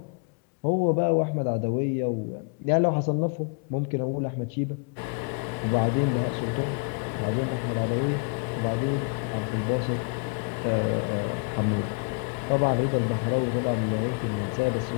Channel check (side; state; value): right; quieter; 36.3 dB